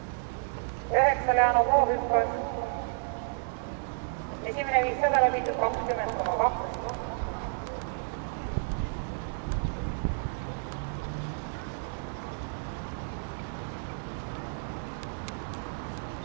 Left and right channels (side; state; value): left; silent; digital silence